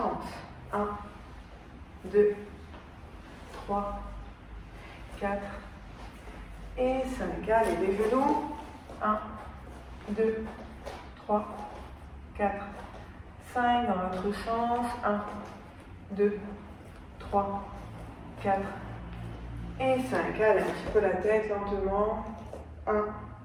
1, 2, 3, 4 et 5. Allez, les genoux. 1, 2, 3, 4, 5. Dans l'autre sens. 1, 2, 3, 4 et 5. Allez, un petit peu la tête lentement. 1,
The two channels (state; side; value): identical; both; correlation 1.00